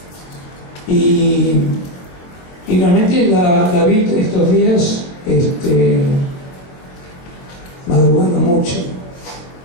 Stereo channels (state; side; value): late; right; 23 ms